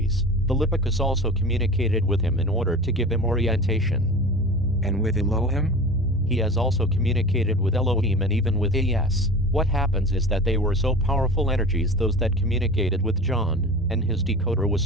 Philippicus also communicated with him in order to give him orientation. And with Elohim? He has also communicated with Elohim and even with AS. What happens is that they were so powerful energies, those that communicated with John, and his decoder was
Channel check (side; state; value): both; normal; correlation 0.34